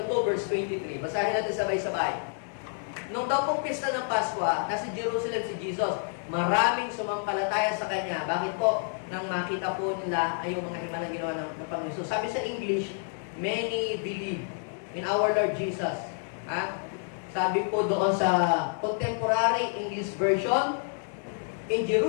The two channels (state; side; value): silent; right; 59 dB below the other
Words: 2, verse 23. Basahin natin sabay-sabay. Nung daw pong pista ng Pasko, nasa Jerusalem si Jesus, maraming sumampalataya sa Kanya. Bakit po? Nang makita po nila ay yung mga himalang ginawa ng Panginoon. So, sabi sa English, many believe in our Lord Jesus. Sabi po doon sa contemporary English version, in